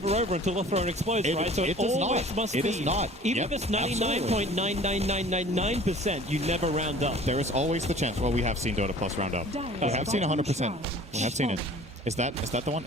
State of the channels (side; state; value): both; normal; correlation 0.47